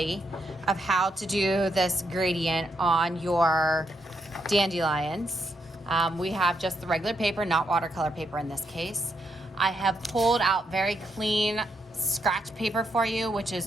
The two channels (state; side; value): normal; both; correlation 0.79